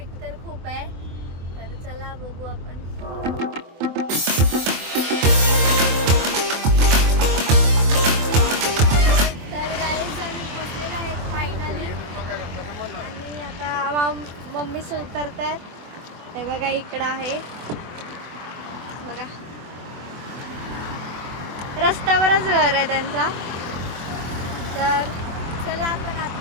तर खूप आहे. तर चला बघू आपण. तर गाईज आम्ही पोचलेलो आहे फायनली. आणि आता मम्मी उतरतायत. हे बघा इकडं आहे बघा, रस्त्यावरच घर आहे त्यांचा. तर चला आपण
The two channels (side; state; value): left; late; 24 ms